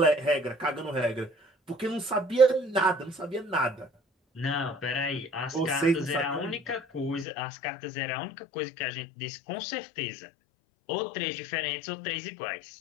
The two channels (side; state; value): right; drops out; at 7.2 s